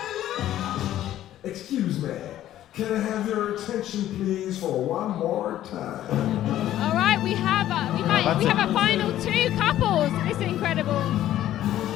Excuse me. Can I have your attention, please, for one more time? All right, we have a final 2 couples. This is incredible.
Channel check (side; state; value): right; quieter; 12.8 dB